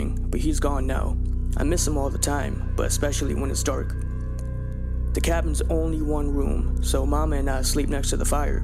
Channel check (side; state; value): both; identical; correlation 1.00